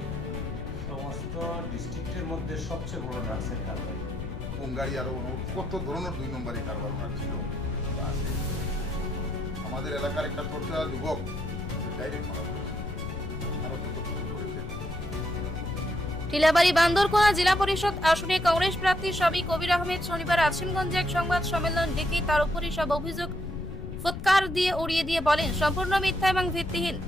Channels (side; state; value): left; noise; rumble, 8 dB below the sound